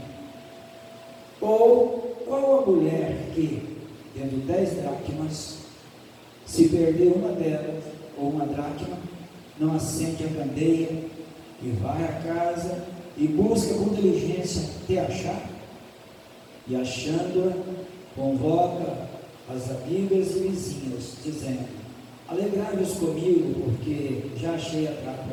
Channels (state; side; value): identical; both; correlation 1.00